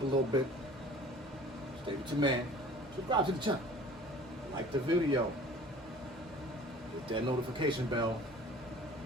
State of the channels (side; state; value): both; normal; correlation 0.47